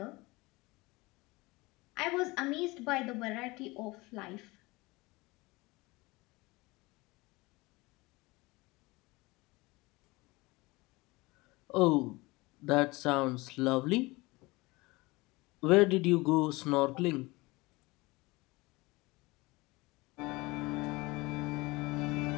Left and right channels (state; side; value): quieter; right; 22.8 dB